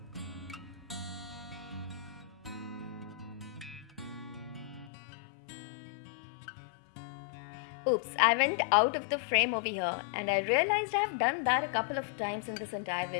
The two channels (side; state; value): right; drops out; at 4.9 s